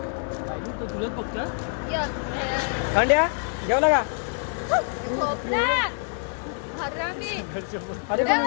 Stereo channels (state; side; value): silent; right; 61 dB below the other